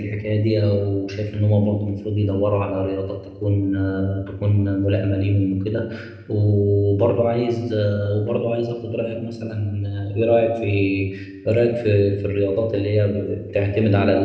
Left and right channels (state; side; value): identical; both; correlation 1.00